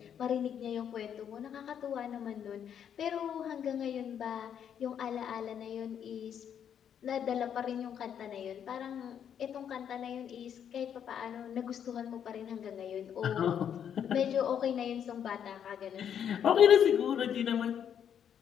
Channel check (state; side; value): quieter; right; 8.7 dB